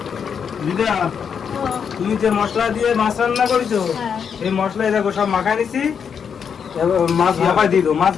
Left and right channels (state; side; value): quieter; right; 7.0 dB